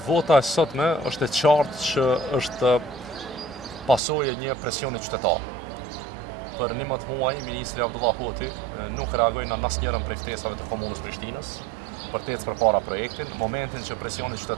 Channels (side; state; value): left; drops out; at 4.0 s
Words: e sotme është e qartë që është pasojë e një presioni qytetar. Për 11 muaj, Ministri Abdullah Hoti nuk reagoi në asnjërin prej ftesave të komunës Prishtinës për të ecë përpara projektin, në momentin që presioni